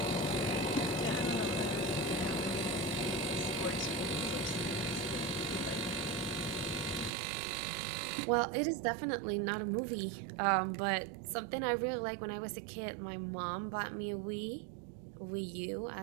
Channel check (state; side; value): drops out; left; at 7.1 s